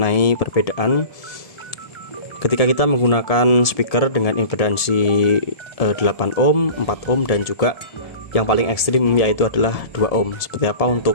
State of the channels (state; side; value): late; right; 1.7 ms